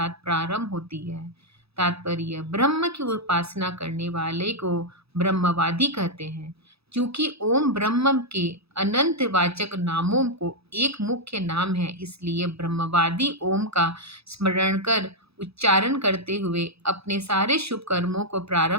प्रारंभ होती है। तात्पर्य: ब्रह्म की उपासना करने वाले को ब्रह्मवादी कहते हैं। क्योंकि ओम ब्रह्म के अनंत वाचक नामों को एक मुख्य नाम है, इसलिए ब्रह्मवादी ओम का स्मरण कर उच्चारण करते हुए अपने सारे शुभ कर्मों को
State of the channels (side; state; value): left; late; 0.78 ms